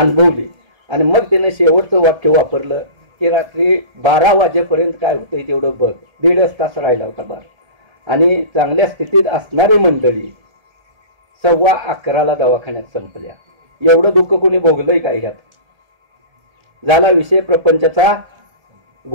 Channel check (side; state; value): left; late; 1.7 ms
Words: आणि मग तिनं शेवटचं वाक्य वापरलं की रात्री 12 वाजेपर्यंत काय होतंय तेवढं बघ. 1.5 तास राहिला होता बार. आणि चांगल्या स्थितीत असणारी मंडळी 11:15 दवाखान्यात संपल्या. एवढं दुःख कोणी भोगलंय काय ह्यात. झाला विषय प्रपंचाचा